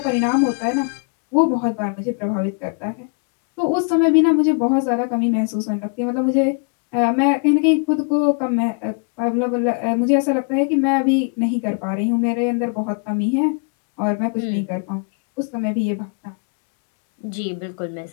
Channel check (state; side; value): quieter; right; 39.2 dB